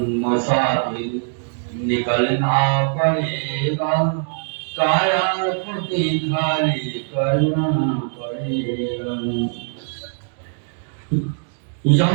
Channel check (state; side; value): silent; left; digital silence